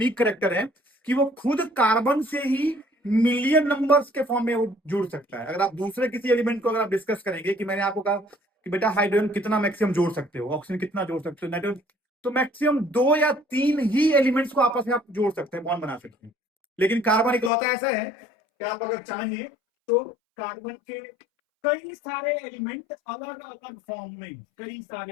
करेक्टर है कि वो खुद कार्बन से ही मिलियन नंबर्स के फॉर्म में वो जुड़ सकता है। अगर आप दूसरे किसी एलिमेंट को अगर आप डिस्कस करेंगे कि मैंने आपको कहा कि बेटा हाइड्रोजन कितना मैक्सिमम जोड़ सकते हो, ऑक्सीजन कितना जोड़ सकते हो, नाइट्रोजन, तो मैक्सिमम 2 या 3 ही एलिमेंट्स को आपस में आप जोड़ सकते हैं, बॉन्ड बना सकते हैं। लेकिन कार्बन इकलौता ऐसा है कि आप अगर चाहें तो कार्बन के कई सारे एलिमेंट अलग अलग फॉर्म में, कई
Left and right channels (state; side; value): drops out; right; at 17.5 s